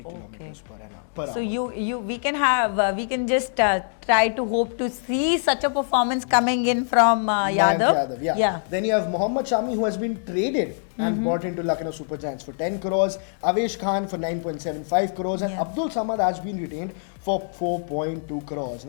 kilometers per hour. So we can just try to hope to see such a performance coming in from Yadav. Yeah. Then you have Mohammad Shami, who has been traded and bought into Lucknow Super Giants for 10 crores, Avesh Khan for 9.75 crores, and Abdul Samad has been retained for 4.2 crores.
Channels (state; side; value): silent; right; digital silence